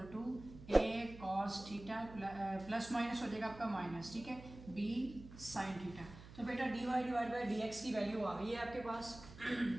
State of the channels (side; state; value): right; noise; hum, 16 dB below the sound